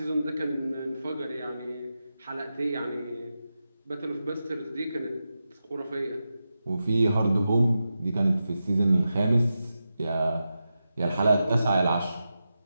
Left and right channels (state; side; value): inverted; both; correlation -0.90